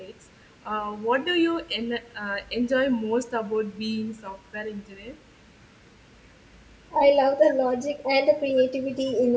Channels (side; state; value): both; identical; correlation 1.00